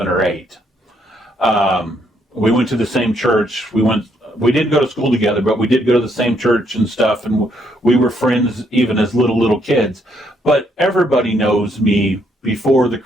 or 8. We went to the same church. We didn't go to school together, but we did go to the same church and stuff, and we were friends even as little kids. But everybody knows me before the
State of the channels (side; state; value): both; normal; correlation 0.72